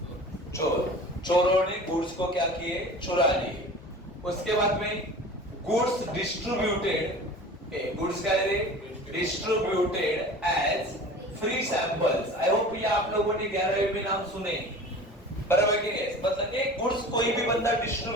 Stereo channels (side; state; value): both; normal; correlation 0.39